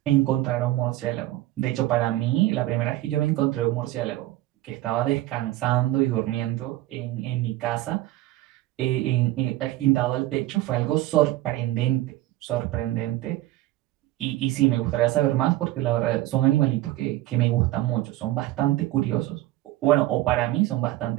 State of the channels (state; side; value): quieter; left; 16.1 dB